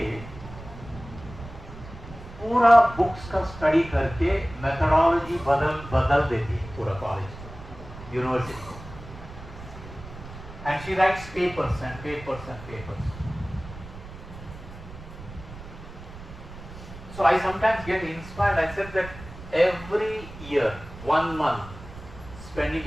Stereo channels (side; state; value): right; noise; rumble, 15 dB below the sound